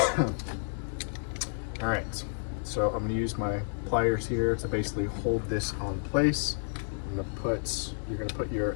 All right, so I'm going to use my pliers here to basically hold this on place. You're going to put your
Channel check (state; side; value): silent; right; digital silence